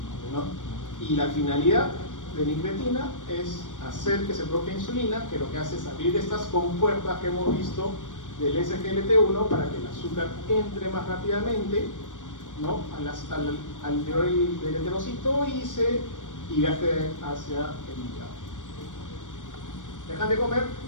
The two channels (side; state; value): right; late; 0.87 ms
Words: ¿no? Y la finalidad de la incretina es hacer que se produzca insulina, que lo que hace es abrir estas compuertas que hemos visto del SGLT1 para que el azúcar entre más rápidamente, ¿no? al interior del enterocito y viaje hacia el hígado. Dejan de comer,